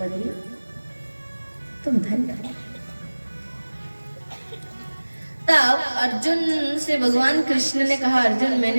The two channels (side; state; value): both; inverted; correlation -1.00